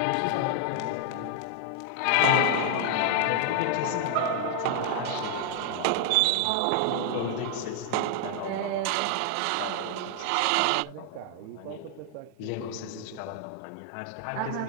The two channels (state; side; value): different; both; correlation 0.00